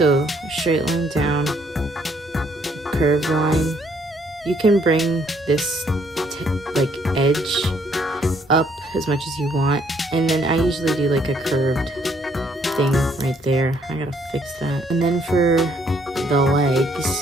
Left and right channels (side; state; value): both; normal; correlation 0.67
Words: straight line down, curved line. You can bring this edge up as much as you want. And then I usually do like a curved thing right there. I gotta fix that. And then for the